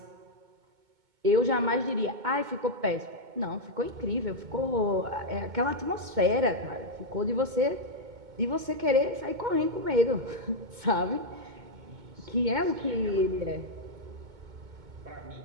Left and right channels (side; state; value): left; late; 2.2 ms